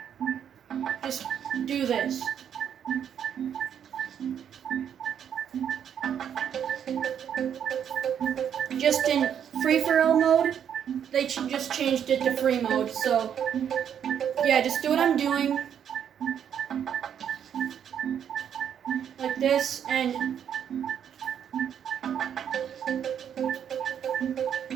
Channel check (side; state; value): left; quieter; 8.7 dB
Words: Just do this. Just in free-for-all mode, they just changed it to free mode, so just do what I'm doing, like this, and